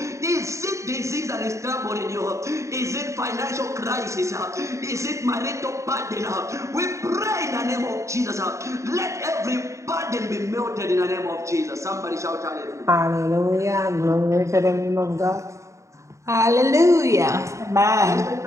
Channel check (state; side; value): late; left; 0.14 ms